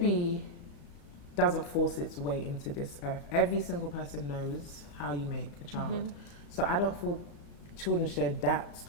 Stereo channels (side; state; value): right; late; 35 ms